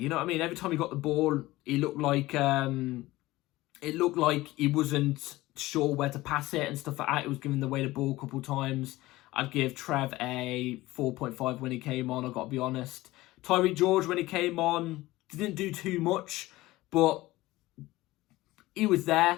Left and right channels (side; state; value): right; quieter; 18.3 dB